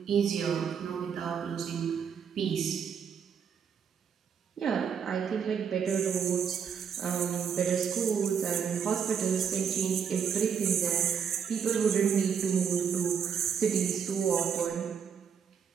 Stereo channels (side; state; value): left; quieter; 7.2 dB